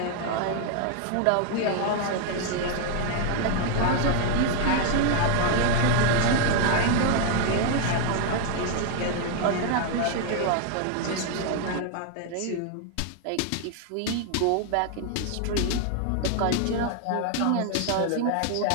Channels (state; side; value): different; both; correlation 0.00